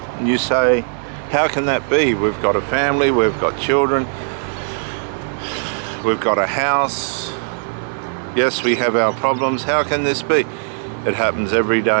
And you say, how can that be? We've got a family, we've got children, we've got a house. Yes, we have our problems. How can this be? It happens every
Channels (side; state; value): left; silent; 58 dB below the other